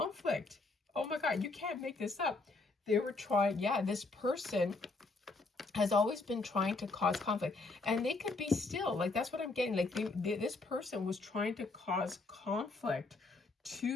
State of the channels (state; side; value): quieter; right; 3.5 dB